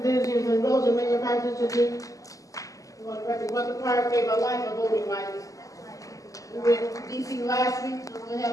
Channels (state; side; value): late; right; 0.16 ms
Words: in Rosa Mayor Parks Institute. Mother Parks gave her life a voting rights. We were in D.C. last week to